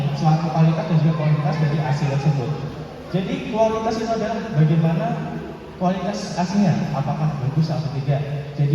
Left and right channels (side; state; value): both; identical; correlation 1.00